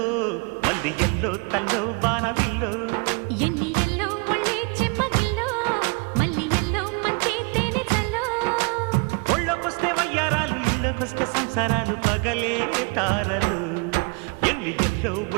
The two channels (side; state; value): left; quieter; 31.6 dB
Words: మల్లి ఎల్లో తల్లో బాణవిల్లో ఎన్ని ఎల్లో ఒళ్ళే చెమ్మగిల్లో మల్లి ఎల్లో మంచి తేనె చల్లో ఒళ్ళోకొస్తే వయ్యారాలు ఇళ్ళకొస్తే సంసారాలు పగలే తారలు ఎన్ని ఎల్లో